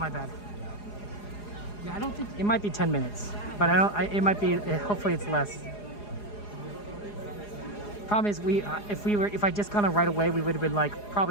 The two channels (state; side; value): late; right; 4.8 ms